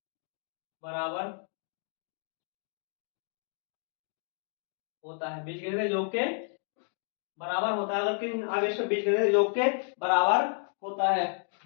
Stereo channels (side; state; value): right; silent; 57 dB below the other